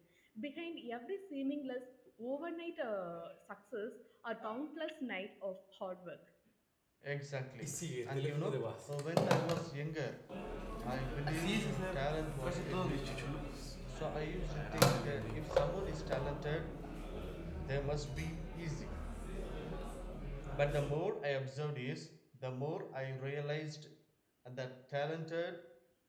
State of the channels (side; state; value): both; identical; correlation 1.00